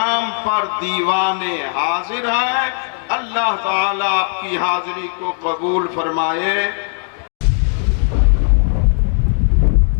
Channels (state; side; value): silent; right; 55 dB below the other